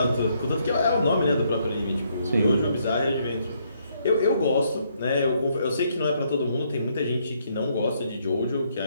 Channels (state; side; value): inverted; both; correlation -0.72